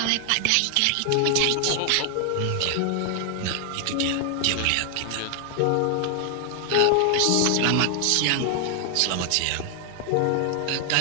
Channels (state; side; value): different; both; correlation 0.00